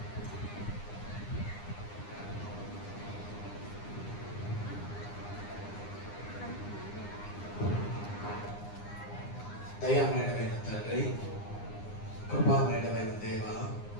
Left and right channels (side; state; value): right; late; 9.8 ms